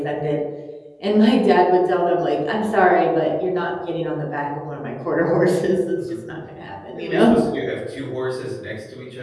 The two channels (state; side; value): identical; both; correlation 1.00